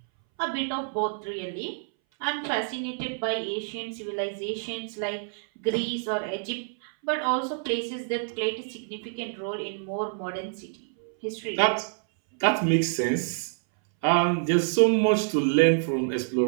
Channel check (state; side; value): silent; left; 60 dB below the other